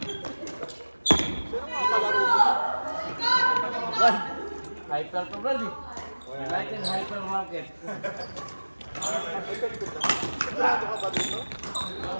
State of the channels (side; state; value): both; inverted; correlation -1.00